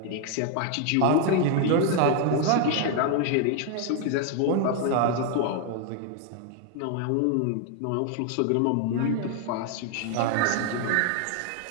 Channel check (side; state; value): both; different; correlation 0.00